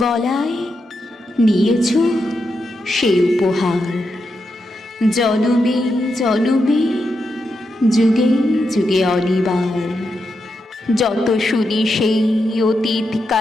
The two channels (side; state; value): both; normal; correlation 0.85